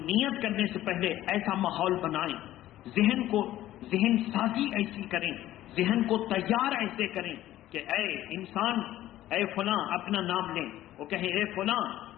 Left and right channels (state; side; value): quieter; right; 14.1 dB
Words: نیت کرنے سے پہلے ایسا ماحول بنائیں، ذہن سازی ایسی کریں، ذہن کو تیار ایسے کریں کہ اے انسان، اے فلاں، اپنا نام لیں، وہ کہیں اے فلاں